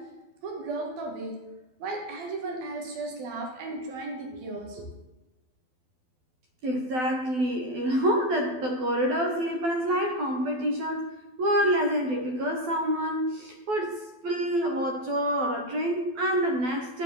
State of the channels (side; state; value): left; late; 12 ms